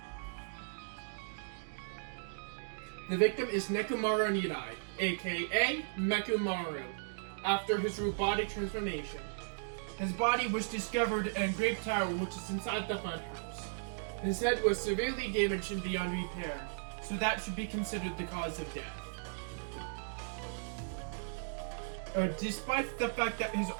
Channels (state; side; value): silent; left; digital silence